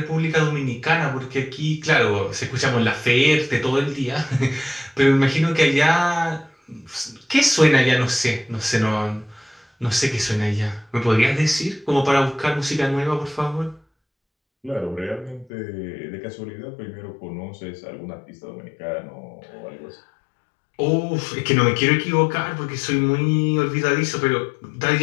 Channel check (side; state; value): right; drops out; at 15.5 s